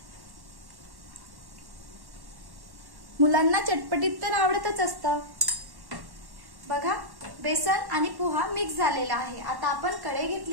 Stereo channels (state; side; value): late; left; 1.1 ms